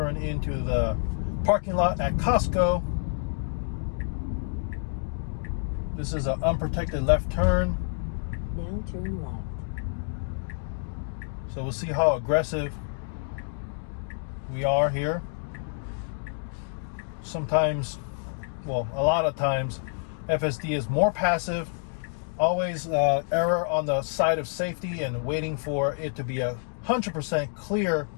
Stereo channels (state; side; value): silent; right; digital silence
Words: into the parking lot at Costco. This is an unprotected left turn. Now turn left. So we'll see how aggressive we are here. Sometimes, well, a lot of times, FSD is more passive, always error on the side of safety and waiting for it to be 100% clear